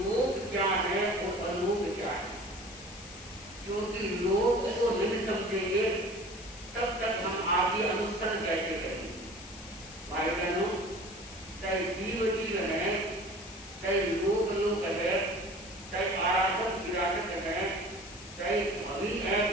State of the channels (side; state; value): left; noise; hiss, 16 dB below the sound